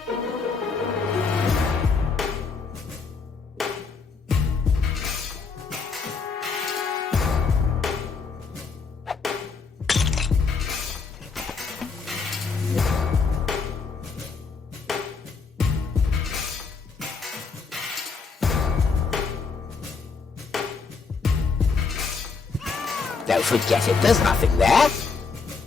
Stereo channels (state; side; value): quieter; right; 4.9 dB